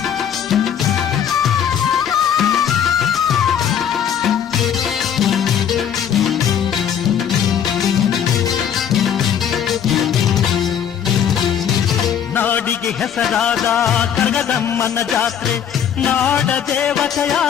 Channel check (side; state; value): right; quieter; 8.7 dB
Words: ನಾಡಿಗೆ ಹೆಸರಾದ ಕರಗದಮ್ಮನ ಜಾತ್ರೆ, ನಾಡ ದೇವತೆಯ